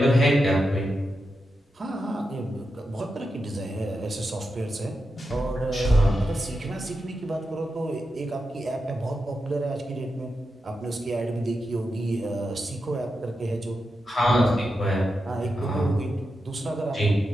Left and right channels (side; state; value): both; normal; correlation 0.88